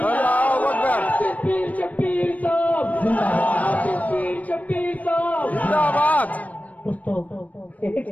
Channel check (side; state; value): right; late; 0.071 ms